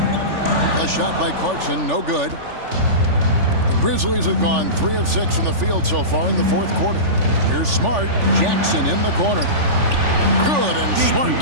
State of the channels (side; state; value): left; late; 3.4 ms